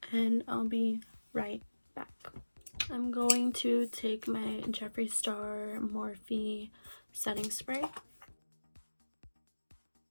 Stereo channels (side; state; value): both; inverted; correlation -1.00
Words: and I'll be right back. I'm going to take my Jeffree Star Morphe setting spray.